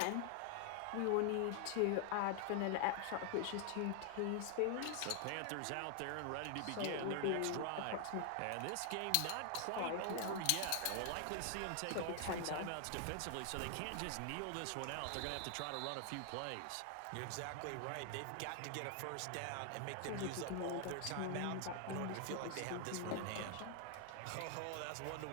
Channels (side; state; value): both; different; correlation 0.00